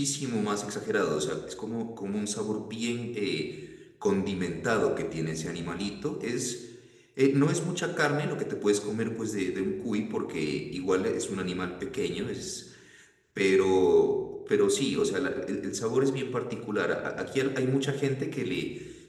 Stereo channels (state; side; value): identical; both; correlation 1.00